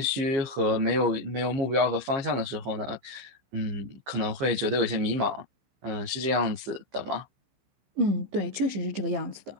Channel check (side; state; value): left; late; 15 ms